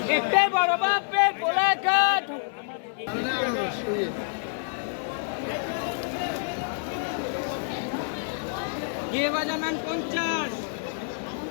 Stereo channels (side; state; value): right; silent; digital silence